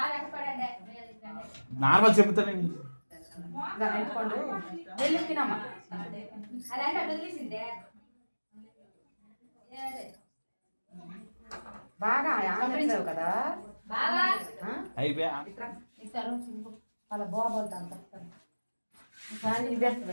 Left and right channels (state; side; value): inverted; both; correlation -1.00